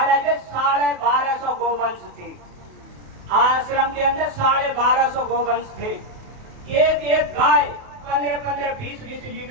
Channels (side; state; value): left; late; 28 ms